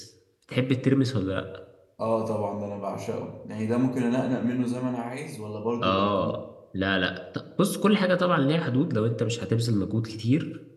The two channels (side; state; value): both; identical; correlation 1.00